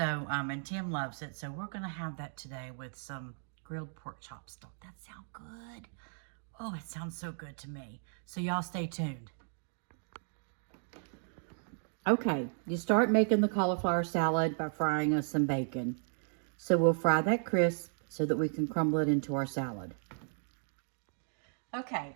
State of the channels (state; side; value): silent; left; digital silence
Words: and Tim loves it. So we're going to have that today with some grilled pork chops. Don't that sound good? Oh, it sounds so good to me. So y'all stay tuned. Okay, you start making the cauliflower salad by frying us some bacon. So we'll fry that crisp so that we can crumble it into our salad.